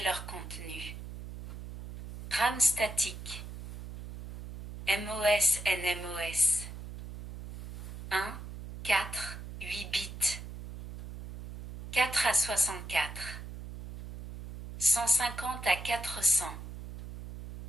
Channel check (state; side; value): noise; right; hum, 11 dB below the sound